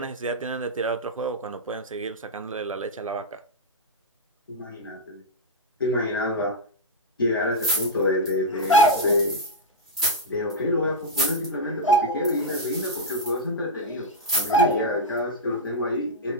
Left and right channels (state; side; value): normal; both; correlation -0.04